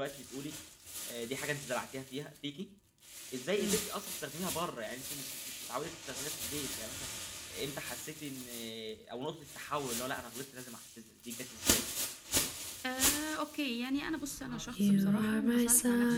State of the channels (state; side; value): identical; both; correlation 1.00